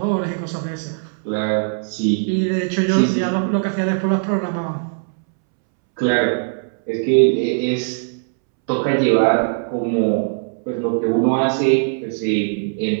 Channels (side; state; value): left; silent; 66 dB below the other